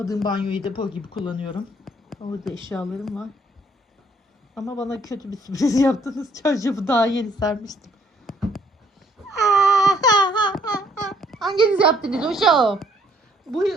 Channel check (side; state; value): both; normal; correlation 0.65